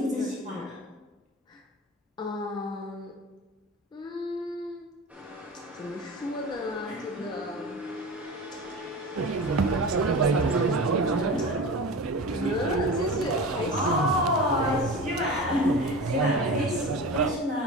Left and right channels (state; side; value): normal; both; correlation 0.31